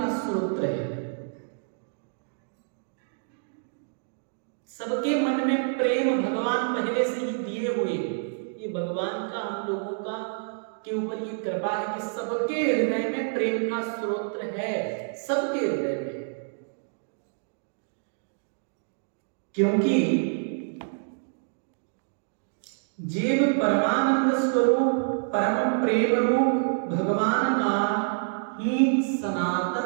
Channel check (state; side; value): silent; left; digital silence